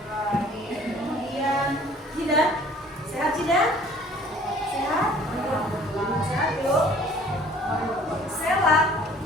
Hadir. Kemudian Cida? Sehat Cida? Sehat? Sehat yuk. Sela?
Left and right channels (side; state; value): both; normal; correlation 0.53